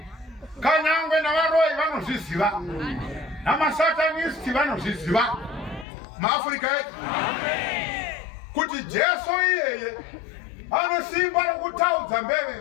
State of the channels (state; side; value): drops out; right; at 5.9 s